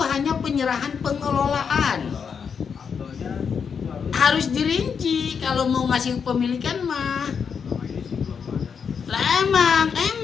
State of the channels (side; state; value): right; quieter; 6.5 dB